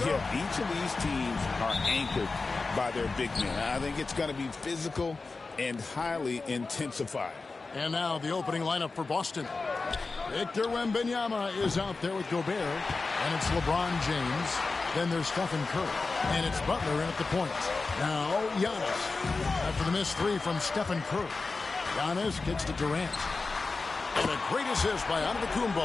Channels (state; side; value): quieter; right; 3.9 dB